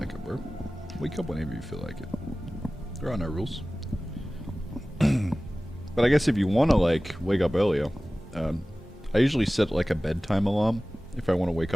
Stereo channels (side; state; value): both; normal; correlation 0.97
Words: it, bro. Wake up whenever you feel like it. There are no rules. But I guess if you want to, like, wake up earlier, I usually set, like, a bedtime alarm if I want to wake